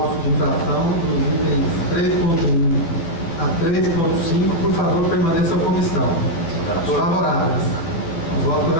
de infração dos itens 3.1 a 3.5, por favor, permaneçam como estão. Favoráveis ao voto do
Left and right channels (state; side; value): late; right; 12 ms